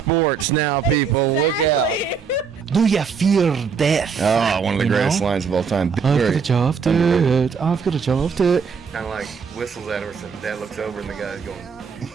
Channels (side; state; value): left; quieter; 6.0 dB